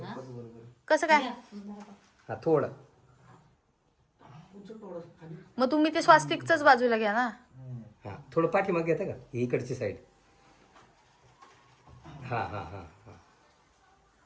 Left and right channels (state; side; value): identical; both; correlation 1.00